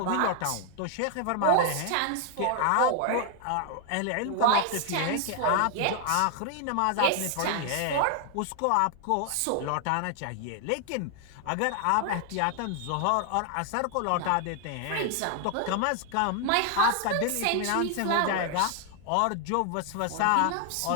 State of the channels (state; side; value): different; both; correlation 0.00